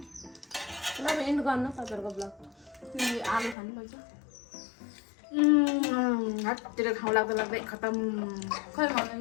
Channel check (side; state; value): right; drops out; at 3.6 s